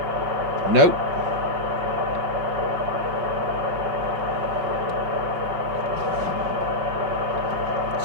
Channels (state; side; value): late; left; 5.3 ms